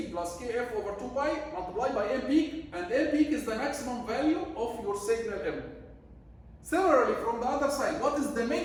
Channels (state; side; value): identical; both; correlation 1.00